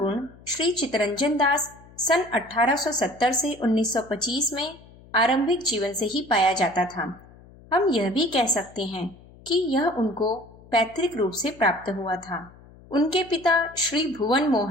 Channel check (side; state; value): left; noise; hum, 23 dB below the sound